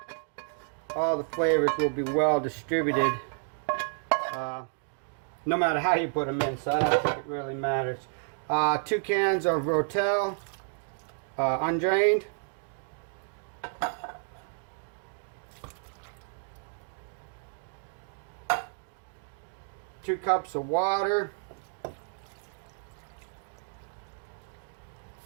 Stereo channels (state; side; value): silent; left; 57 dB below the other